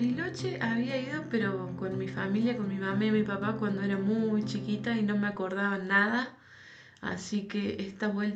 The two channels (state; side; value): identical; both; correlation 1.00